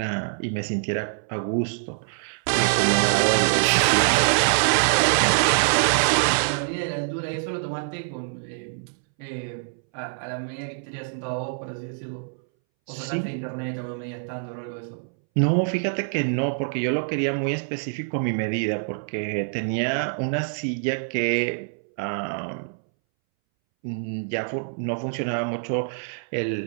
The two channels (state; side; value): silent; left; 62 dB below the other